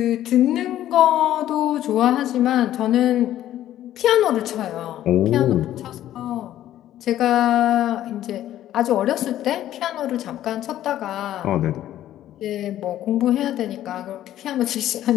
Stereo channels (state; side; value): quieter; right; 12.6 dB